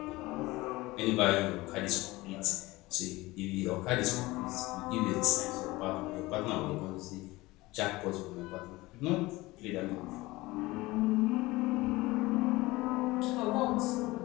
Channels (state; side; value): quieter; right; 20.4 dB